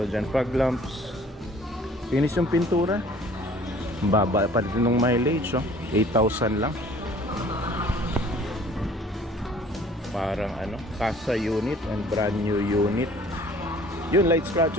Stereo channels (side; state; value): both; normal; correlation 0.52